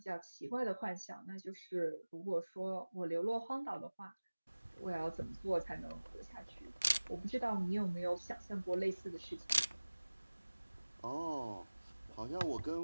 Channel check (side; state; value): both; inverted; correlation -1.00